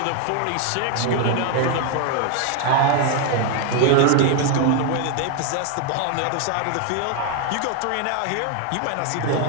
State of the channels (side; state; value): both; different; correlation 0.00